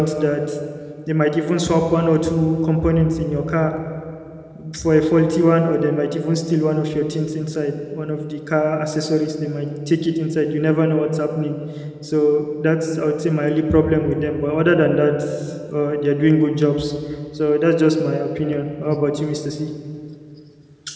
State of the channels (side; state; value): both; identical; correlation 1.00